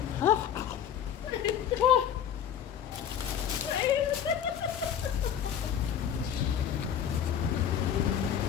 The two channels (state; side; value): quieter; right; 8.9 dB